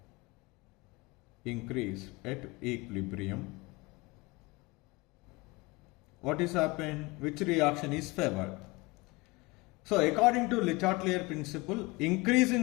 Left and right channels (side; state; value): right; quieter; 24.1 dB